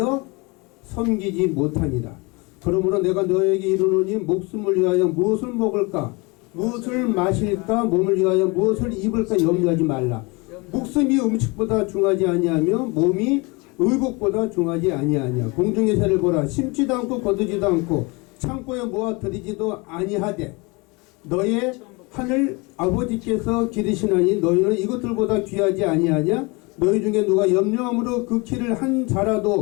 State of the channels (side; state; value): right; quieter; 27.3 dB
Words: 섬기지 못하니라. 그러므로 내가 너에게 이르노니 목숨을 위하여 무엇을 먹을까, 무엇을 마실까, 몸을 위하여 무엇을 입을까 염려하지 말라. 목숨이 음식보다 중하지 아니하며 몸이 의복보다 중하지 아니하냐. 공중의 새를 보라. 심지도 않고 거두지도 않고 창고에 모아 들이지도 아니하되 너의 하늘 아버지께서 기르시나니 너희는 이것들보다 귀하지 아니하냐. 너희 중에 누가 염려함으로 그 키를 한